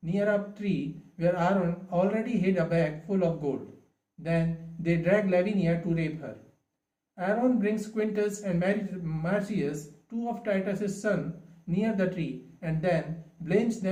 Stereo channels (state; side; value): identical; both; correlation 1.00